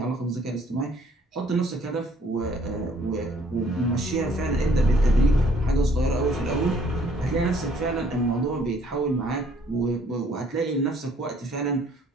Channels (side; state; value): both; normal; correlation 0.61